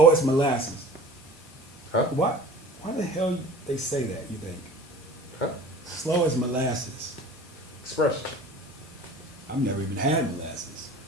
as molasses. Huh? Why the hell they say that, you think? Huh? Slow as molasses. Expression. I've never even had molasses.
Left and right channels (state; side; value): normal; both; correlation 0.42